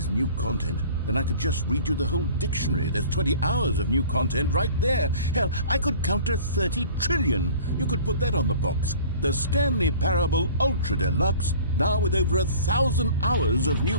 new content, then I could just read you the whole dictionary. There's 20 hours of new content right there. Hell, I could count to 30 trillion. You could put that on the box. The Stanley Parable Ultra Deluxe, now with over 1,000 hours of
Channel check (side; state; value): both; inverted; correlation -0.46